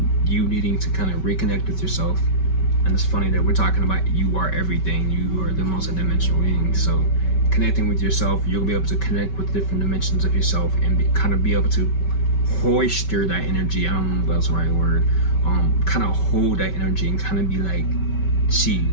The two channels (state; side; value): late; right; 5.2 ms